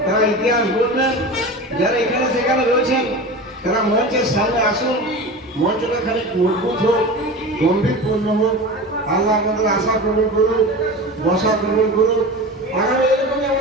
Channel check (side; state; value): both; normal; correlation 0.31